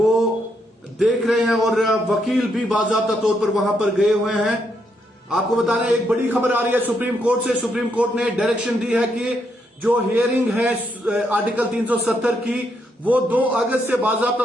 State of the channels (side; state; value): both; normal; correlation 0.77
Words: देख रहे हैं और वकील भी बाकायदा तौर पर वहां पर गए हुए हैं। आपको बता दें, एक बड़ी खबर आ रही है सुप्रीम कोर्ट से। सुप्रीम कोर्ट ने डायरेक्शन दी है कि जो हियरिंग है आर्टिकल 370 की, वो 2 अगस्त से बाकायदा